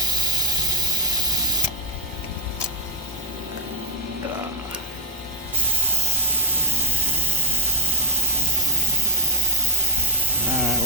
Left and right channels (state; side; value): normal; both; correlation 0.07